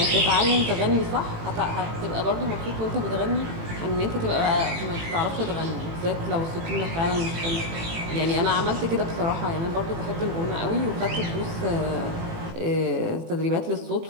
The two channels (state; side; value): late; left; 18 ms